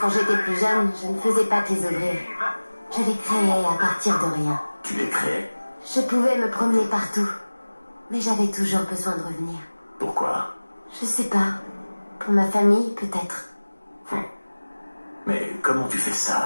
j'étais plus jeune, je ne faisais pas que les ouvrir. Je les créais à partir de rien. Tu les créais? Je pouvais me promener partout. Mais j'avais toujours besoin de revenir. Pourquoi? Je sais pas. Pour ma famille, peut-être. Mais comment tu fais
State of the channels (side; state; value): both; inverted; correlation -1.00